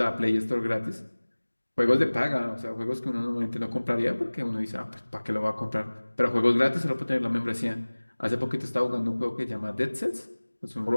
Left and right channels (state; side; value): inverted; both; correlation -1.00